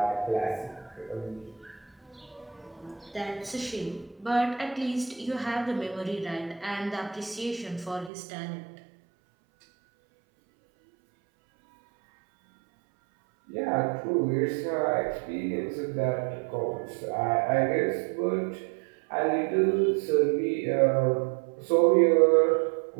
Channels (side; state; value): left; drops out; at 8.1 s